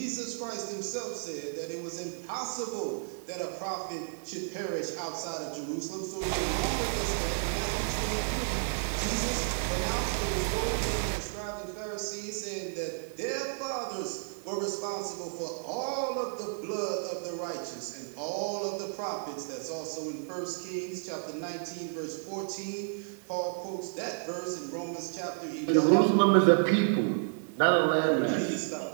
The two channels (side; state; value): left; silent; digital silence